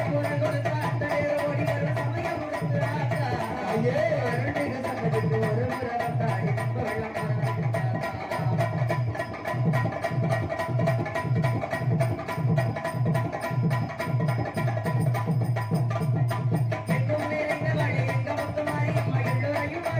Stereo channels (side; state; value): both; identical; correlation 1.00